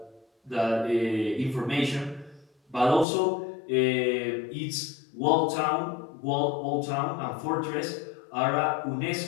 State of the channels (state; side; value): drops out; right; at 3.1 s